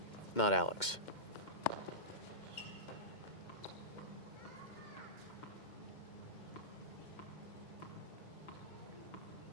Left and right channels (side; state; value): right; late; 2.1 ms